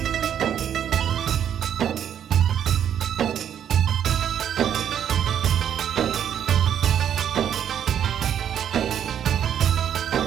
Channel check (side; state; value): left; quieter; 9.4 dB